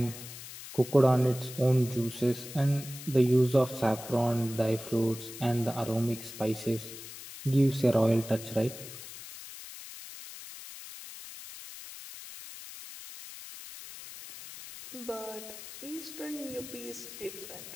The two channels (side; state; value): left; noise; hiss, 13 dB below the sound